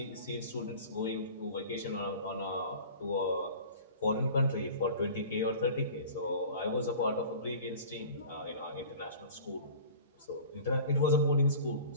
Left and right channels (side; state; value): both; inverted; correlation -0.41